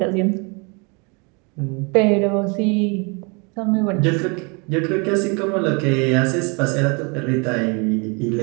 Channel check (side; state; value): left; quieter; 31.7 dB